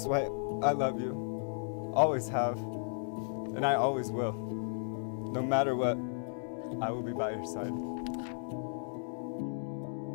White, I love you, always have, and I always will. No matter what, I will be by your side.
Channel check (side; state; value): right; silent; digital silence